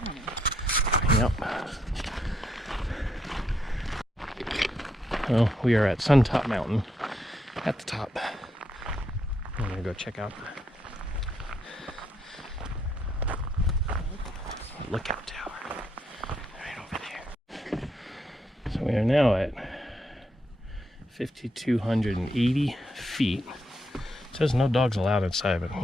honey. Yep. Well, we are at Suntop Mountain, at the top. I'm gonna go check out the lookout tower right over there. So we are now at 5,280 feet. It says no dogs allowed inside, but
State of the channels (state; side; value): normal; both; correlation 0.77